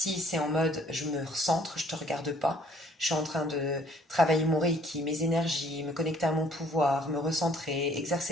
c'est en mode je me recentre, je ne te regarde pas. Je suis en train de travailler mon reiki, mes énergies, me connecter à mon pouvoir, me recentrer, exercer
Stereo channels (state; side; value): normal; both; correlation 0.59